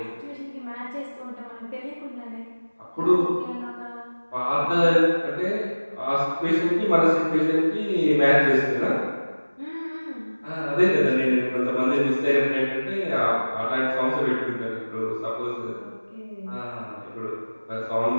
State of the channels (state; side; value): inverted; both; correlation -1.00